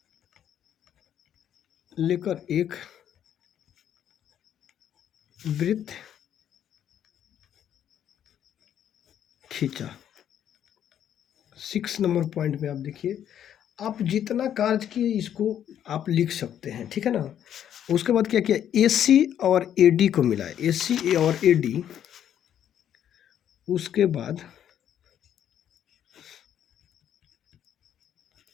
एक वृत्त खींचा। 6 नंबर पॉइंट में आप देखिए, आप जितना कार्य किए इसको आप लिख सकते हैं, ठीक है ना। उसके बाद क्या किया, ए सी और ए डी को मिलाया, ए सी और ए डी, उसके बाद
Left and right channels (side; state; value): right; quieter; 10.0 dB